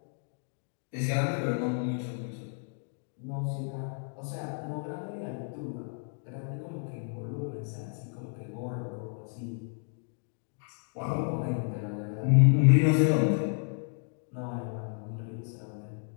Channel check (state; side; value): silent; right; 57 dB below the other